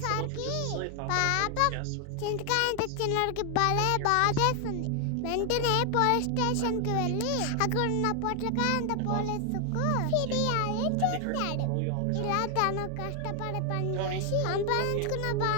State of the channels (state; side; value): different; both; correlation 0.00